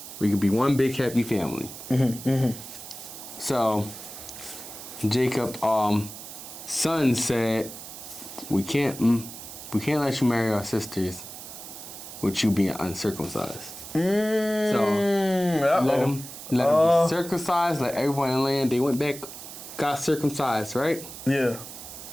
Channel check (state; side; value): noise; right; hiss, 12 dB below the sound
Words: We could be one big happy family. So Jacob, son said, we can't let you marry our sisters with you being uncircumcised. So let them be circumcised. Let everyone in the land. They went back, got circumcised, right? Yeah.